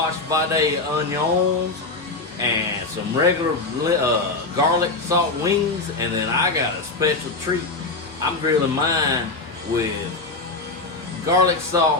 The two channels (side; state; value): right; quieter; 3.5 dB